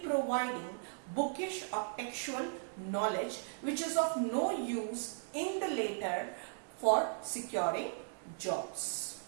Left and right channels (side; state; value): left; silent; digital silence